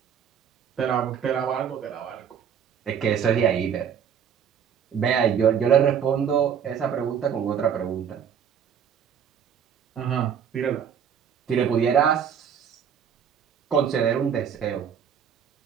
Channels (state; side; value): quieter; left; 8.0 dB